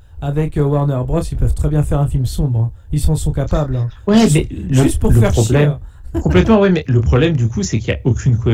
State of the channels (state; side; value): identical; both; correlation 1.00